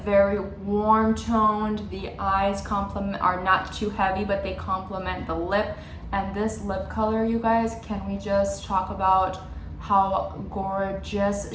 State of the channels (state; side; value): identical; both; correlation 1.00